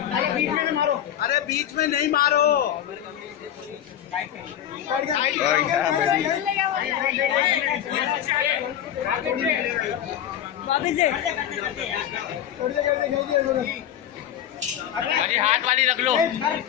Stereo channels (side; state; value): right; quieter; 10.6 dB